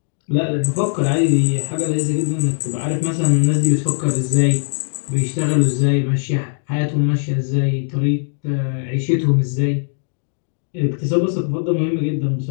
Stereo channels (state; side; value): silent; right; digital silence